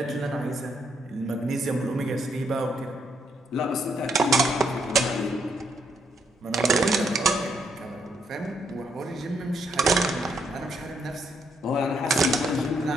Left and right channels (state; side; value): normal; both; correlation 0.74